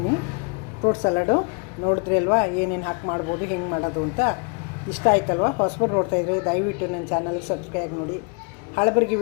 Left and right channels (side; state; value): right; quieter; 35.0 dB